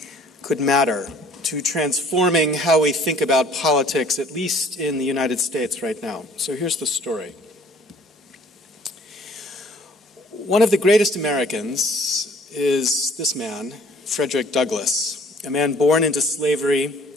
could matter to transforming how we think about politics, at least in the United States right now. So here's the story. One of the greatest Americans is this man, Frederick Douglass, a man born into slavery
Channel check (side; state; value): both; normal; correlation 0.56